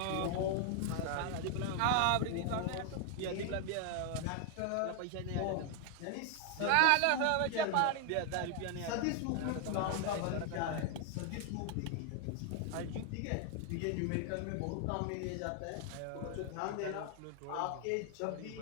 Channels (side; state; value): both; different; correlation 0.00